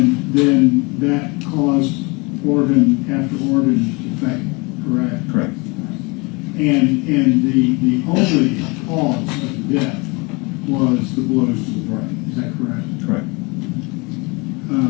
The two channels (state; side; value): quieter; right; 27.7 dB